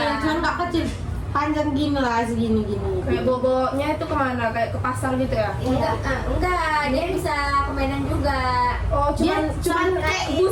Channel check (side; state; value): both; identical; correlation 1.00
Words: cuman nggak kecil, panjang gini lah, segini. Kayak boboknya itu kemana? Kayak ke pasar gitu ya? Enggak, dia bisa ke Medan juga. Oh cuman kayak